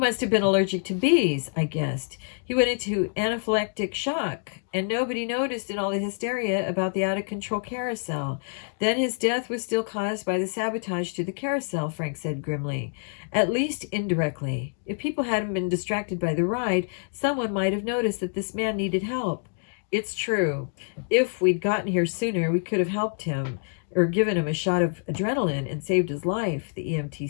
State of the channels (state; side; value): silent; right; digital silence